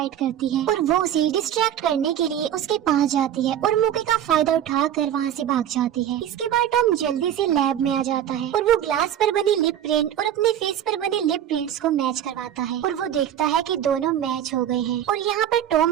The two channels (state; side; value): quieter; left; 10.5 dB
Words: करती है और वो उसे डिस्ट्रैक्ट करने के लिए उसके पास जाती है और मौके का फायदा उठाकर वहाँ से भाग जाती है। इसके बाद टॉम जल्दी से लैब में आ जाता है और वो ग्लास पर बनी लिप प्रिंट और अपने फेस पर बने लिप प्रिंट्स को मैच करवाता है और वो देखता है कि दोनों मैच हो गए हैं। और यहाँ पर